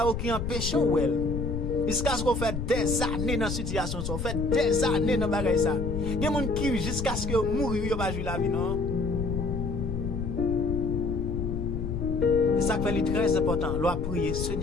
qui empêche ou elle. Jusqu'à ce qu'on fait des années dans situation ça, fait des années dans bagaille ça. Il y a monde qui jusqu'à ce que mourir yo pas jouer la vie non. Et ça fait très important, loi prier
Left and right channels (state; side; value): noise; left; rumble, 4 dB below the sound